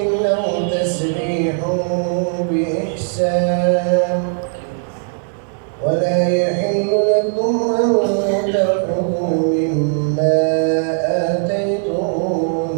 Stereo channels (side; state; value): left; silent; digital silence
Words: أو تسريح بإحسان ولا يحل لكم أن تأخذوا مما